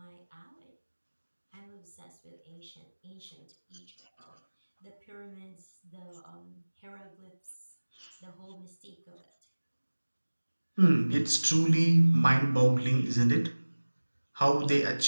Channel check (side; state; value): both; inverted; correlation -1.00